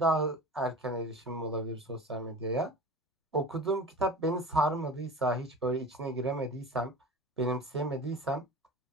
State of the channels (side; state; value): both; normal; correlation 0.36